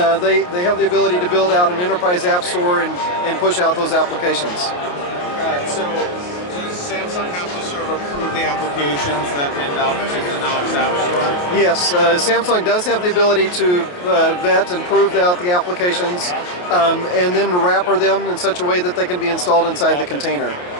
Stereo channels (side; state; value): right; late; 28 ms